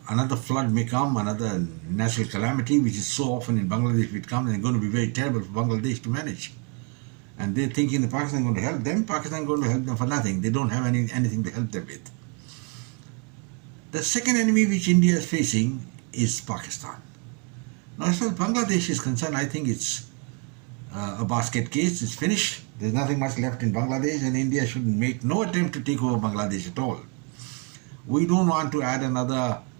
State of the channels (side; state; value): left; quieter; 32.3 dB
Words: flood may come, another natural calamity, which is so often in Bangladesh, it comes, and it's going to be very terrible for Bangladesh to manage. And they're thinking that Pakistan is going to help them. Pakistan is going to help them for nothing. They don't have anything to help them with. The second enemy which India is facing is Pakistan. Now, as far as Bangladesh is concerned, I think it's a basket case. It's finished. There's nothing much left in Bangladesh, and India should make no attempt to take over Bangladesh at all. We don't want to add another